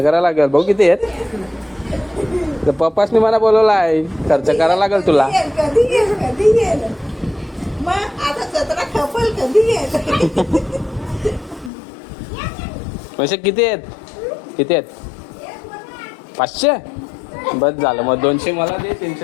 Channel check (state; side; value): drops out; right; at 11.7 s